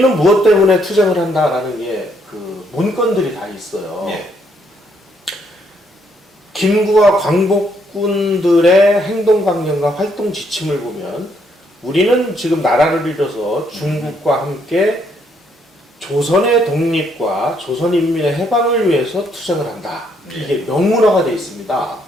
무엇 때문에 투쟁을 한다라는 게 그 문건들이 다 있어요. 예. 김구와 광복군들의 행동 강령과 활동 지침을 보면 우리는 지금 나라를 잃어서 중국과 함께 조선의 독립과 조선인민의 해방을 위해서 투쟁을 한다. 이게 명문화가 되어 있습니다.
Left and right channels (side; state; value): both; normal; correlation 0.71